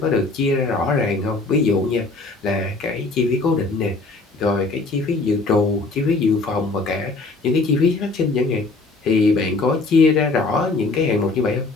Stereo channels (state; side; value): quieter; right; 3.5 dB